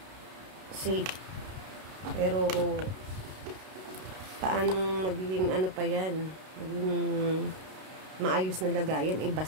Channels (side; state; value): left; late; 32 ms